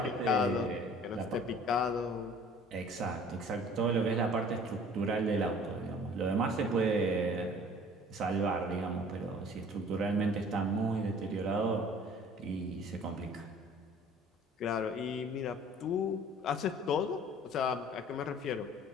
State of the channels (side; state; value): both; normal; correlation 0.50